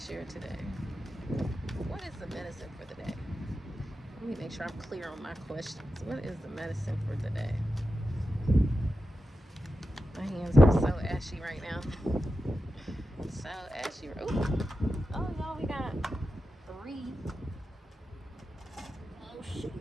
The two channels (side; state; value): both; normal; correlation 0.91